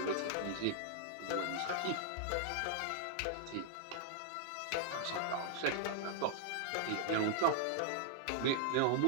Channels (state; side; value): different; both; correlation -0.01